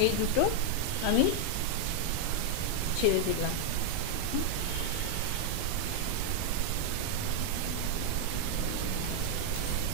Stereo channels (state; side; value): different; both; correlation 0.00